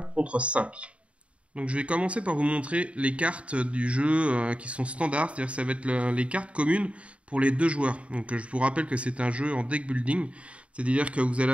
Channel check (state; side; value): late; left; 0.062 ms